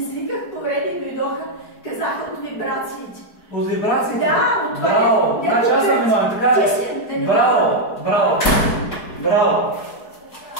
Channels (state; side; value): late; right; 4.7 ms